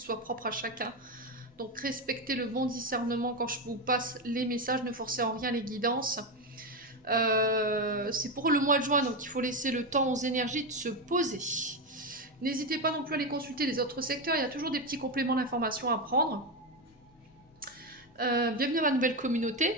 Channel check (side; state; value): both; normal; correlation 0.11